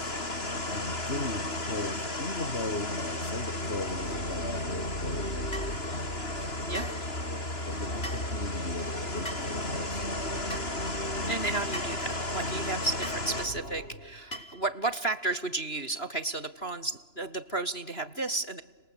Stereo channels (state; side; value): late; right; 2.9 ms